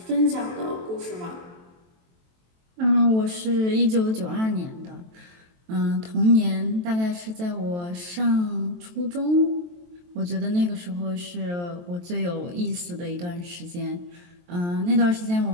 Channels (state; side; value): late; left; 23 ms